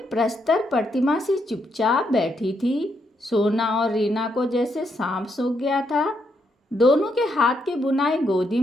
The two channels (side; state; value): both; normal; correlation 0.78